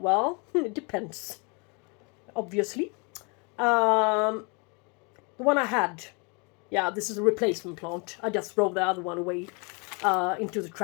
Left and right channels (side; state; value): right; quieter; 32.4 dB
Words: it depends, obviously. The one I had, yeah, this is a replacement plant. I just throw the other one away into the